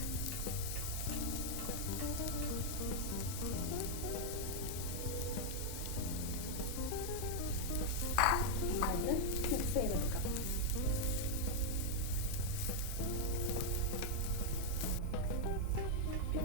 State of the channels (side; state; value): both; different; correlation -0.01